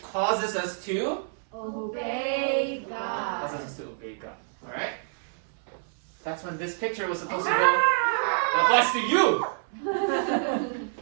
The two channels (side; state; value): left; silent; 60 dB below the other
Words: causes us to Obey God. causes us to obey God. Alright? That's when this picture was supposed to go. That applies to you!